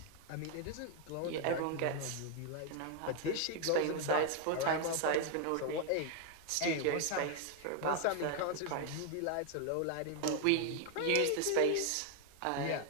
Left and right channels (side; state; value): both; different; correlation 0.00